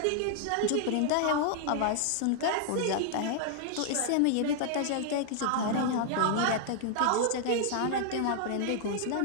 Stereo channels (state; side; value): different; both; correlation 0.00